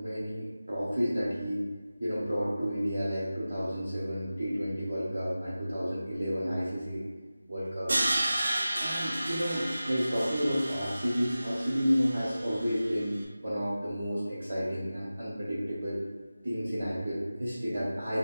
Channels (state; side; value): inverted; both; correlation -0.96